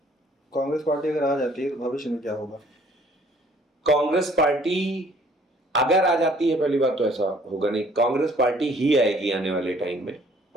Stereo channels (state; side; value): normal; both; correlation 0.58